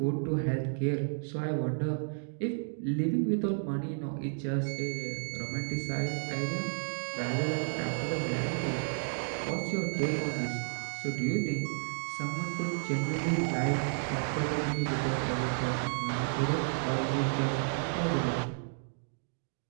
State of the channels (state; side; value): silent; left; digital silence